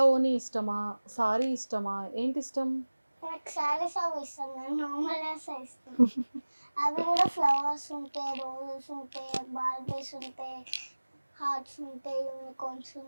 ఓని ఇష్టమా, సారీ ఇష్టమా, ఏంటి ఇష్టం? నాకు సారీస్ అవి ఇష్టం, నేను నార్మల్ ఇష్టం. అవి కూడా ఫ్లవర్స్ ఉంటాయి, రోజెస్ ఉంటాయి, బార్బీస్ ఉంటాయి, హార్ట్స్ ఉంటాయి, యూనికార్న్స్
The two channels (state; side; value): inverted; both; correlation -1.00